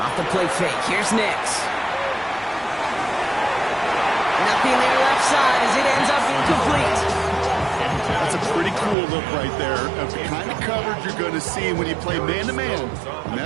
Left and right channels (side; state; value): left; drops out; at 9.0 s